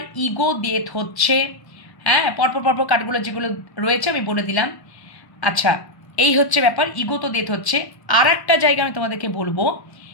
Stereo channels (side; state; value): right; late; 1.1 ms